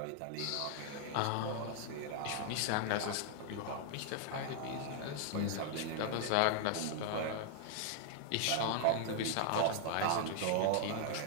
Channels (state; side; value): different; both; correlation 0.00